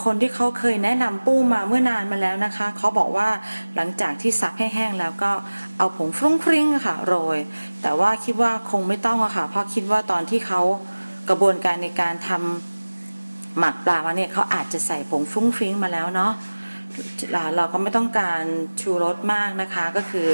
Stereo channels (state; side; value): inverted; both; correlation -1.00